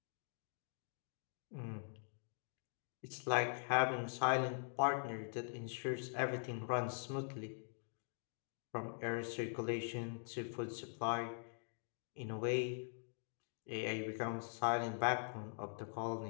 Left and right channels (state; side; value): silent; right; digital silence